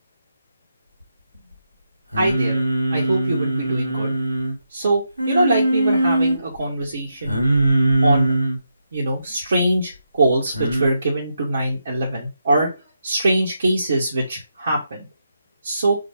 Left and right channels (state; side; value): inverted; both; correlation -0.84